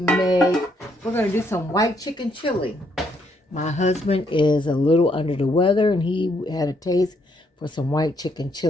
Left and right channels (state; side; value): normal; both; correlation 0.73